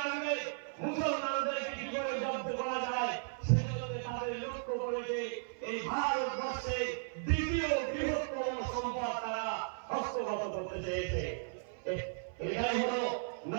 মুসলমানদেরকে কি করে জব্দ করা যায় সেজন্য তাদের লক্ষ্য করেছে এই ভারতবর্ষে দ্বিতীয় বৃহত্তম সম্পদ তারা হস্তগত করতে চেয়েছে। এটাই হলো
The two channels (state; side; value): silent; left; 54 dB below the other